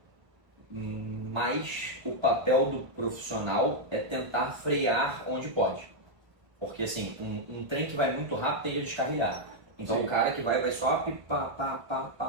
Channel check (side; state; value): left; late; 1.7 ms